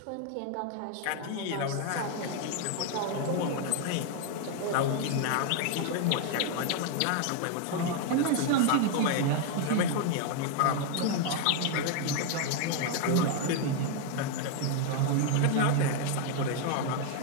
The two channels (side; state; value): both; different; correlation 0.01